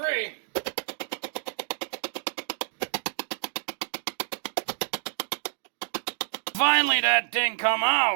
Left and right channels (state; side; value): silent; left; digital silence